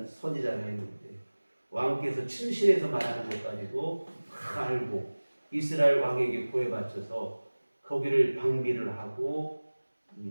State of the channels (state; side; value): inverted; both; correlation -1.00